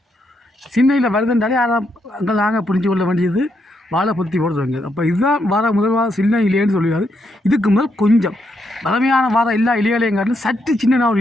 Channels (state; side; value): normal; both; correlation 0.79